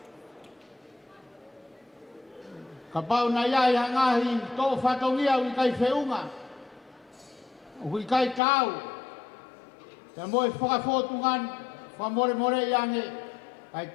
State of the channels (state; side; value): drops out; right; at 8.4 s